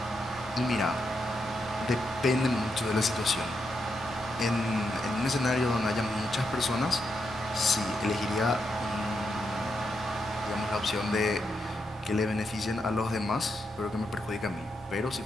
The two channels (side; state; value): right; noise; hum, 24 dB below the sound